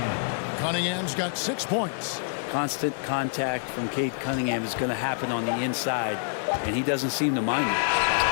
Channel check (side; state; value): right; silent; digital silence